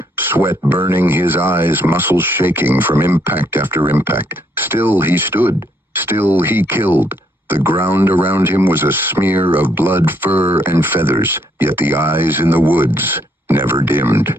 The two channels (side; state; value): both; normal; correlation 0.71